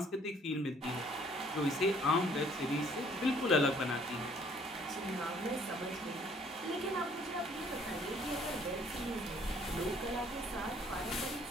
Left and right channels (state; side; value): normal; both; correlation 0.60